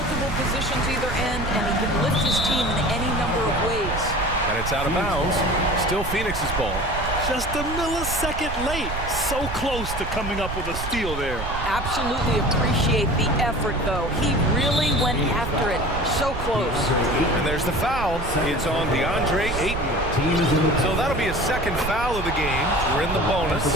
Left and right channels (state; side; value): noise; right; rumble, 7 dB below the sound